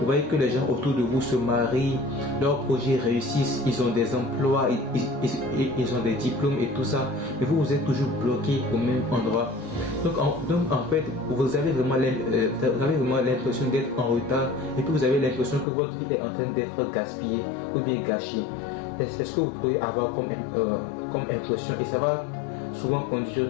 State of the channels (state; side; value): drops out; right; at 15.7 s